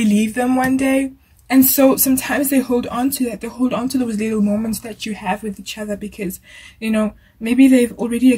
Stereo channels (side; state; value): both; identical; correlation 1.00